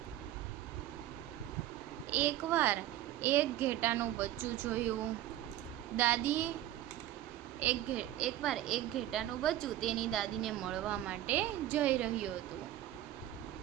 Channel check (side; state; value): left; quieter; 13.3 dB